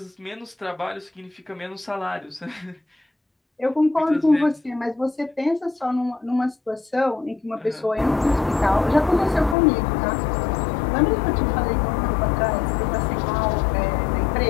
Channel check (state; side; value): drops out; right; at 9.6 s